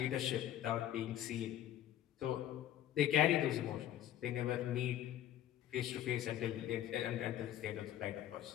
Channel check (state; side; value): quieter; right; 11.9 dB